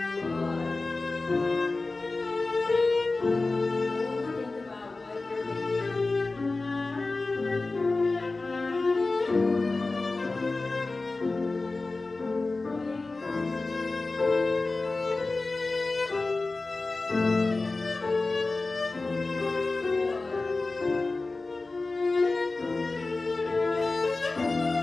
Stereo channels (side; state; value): right; quieter; 3.4 dB